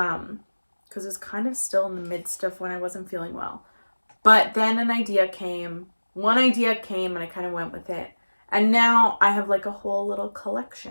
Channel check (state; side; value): inverted; both; correlation -1.00